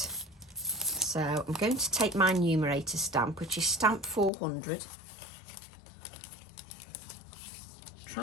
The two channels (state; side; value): drops out; right; at 4.3 s